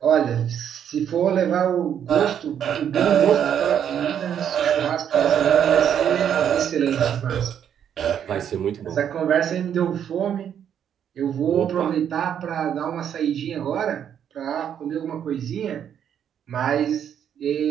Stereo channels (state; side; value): quieter; left; 9.0 dB